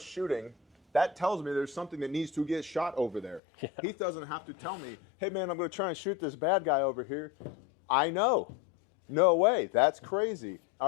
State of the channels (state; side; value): drops out; right; at 3.4 s